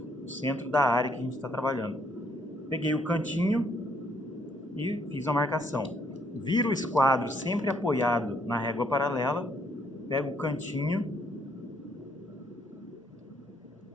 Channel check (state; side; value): normal; both; correlation 0.70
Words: da área que a gente está trabalhando? Peguei o cantinho e fiz a marcação. Viro o esquadro sempre apoiado na régua paralela, pego o cantinho